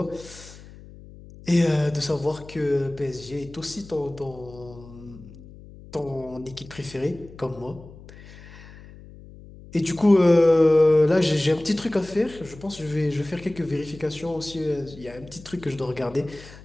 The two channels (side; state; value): left; noise; hum, 19 dB below the sound